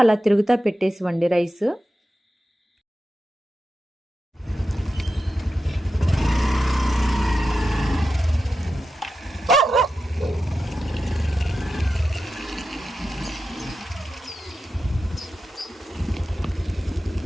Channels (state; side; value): normal; both; correlation 0.90